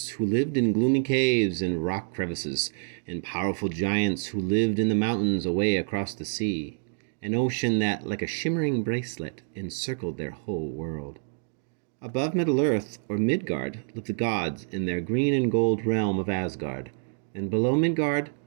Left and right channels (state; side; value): silent; left; digital silence